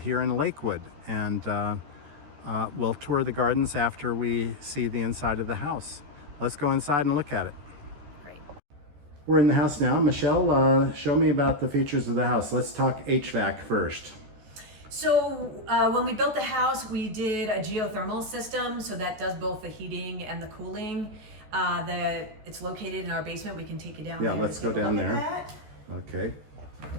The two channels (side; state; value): left; late; 14 ms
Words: in Lakewood. And we'll tour the gardens after we see the inside of the house. Let's go inside and look at it. Great. We're in the house now. Michele, show me about the features of the house. Let's talk HVAC first. So when we built the house, we did a geothermal system, so that does both the heating and the cooling. It's located in our basement. We can take you down there. Yeah, let's go down there. Okay.